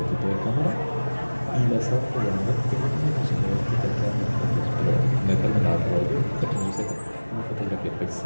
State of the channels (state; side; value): inverted; both; correlation -1.00